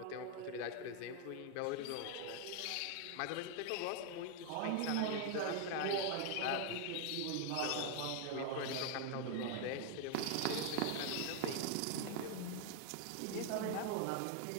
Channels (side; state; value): both; different; correlation 0.00